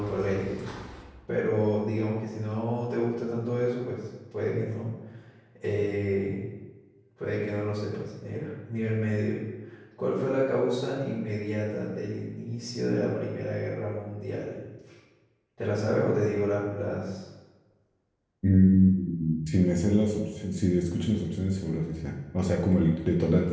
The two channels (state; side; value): identical; both; correlation 1.00